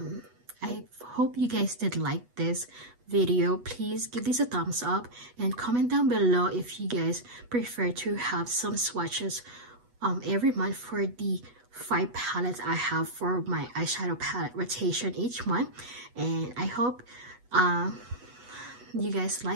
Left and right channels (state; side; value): late; left; 8.2 ms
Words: hope you guys did like this video. Please give this a thumbs up and comment down below if you guys prefer to have some swatches every month for the 5 palettes I have for my eyeshadow palette rotation each month. And I hope you guys